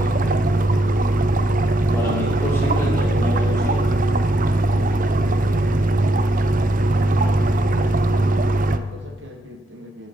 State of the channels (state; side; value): normal; both; correlation 0.77